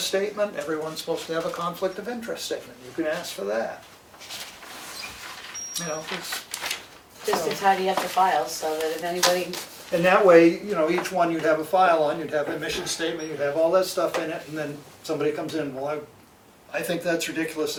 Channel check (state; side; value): identical; both; correlation 1.00